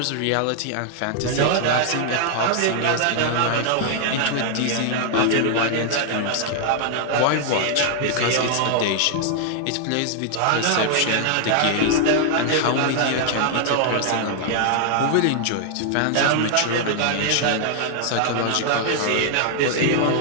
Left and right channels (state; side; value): different; both; correlation 0.00